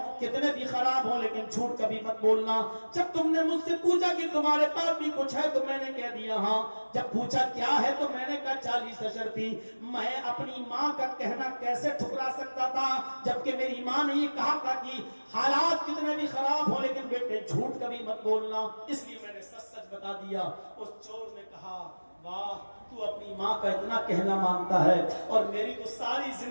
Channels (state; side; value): inverted; both; correlation -1.00